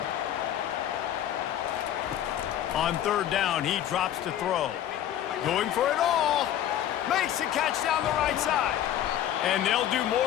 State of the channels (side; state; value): right; quieter; 11.2 dB